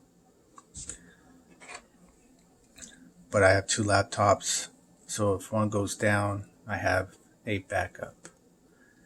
But I have two laptops, so if one goes down, I have a backup.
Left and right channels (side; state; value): both; identical; correlation 1.00